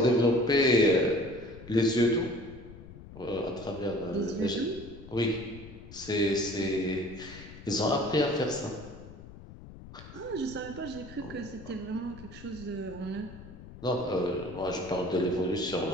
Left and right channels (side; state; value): left; noise; rumble, 16 dB below the sound